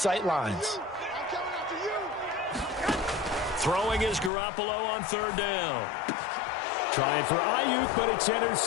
lines. Throwing is Garoppolo on third down. Trying for Ayuk, but it's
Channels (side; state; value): right; drops out; at 4.3 s